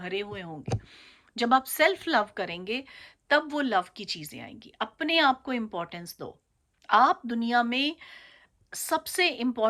हुए होंगे, जब आप सेल्फ लव करेंगे, तब वो लव की चीज़ें आएँगी। अपने आप को इम्पोर्टेंस दो। आप दुनिया में सबसे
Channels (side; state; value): both; identical; correlation 1.00